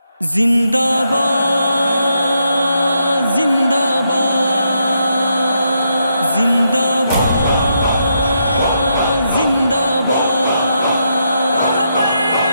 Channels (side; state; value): both; inverted; correlation -0.79